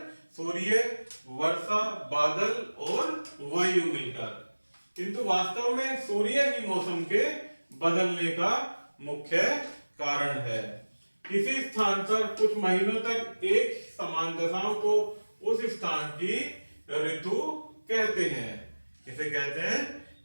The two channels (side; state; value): both; inverted; correlation -1.00